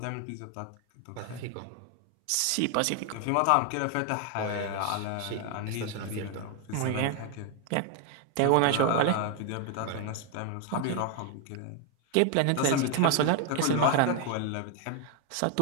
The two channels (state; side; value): different; both; correlation 0.01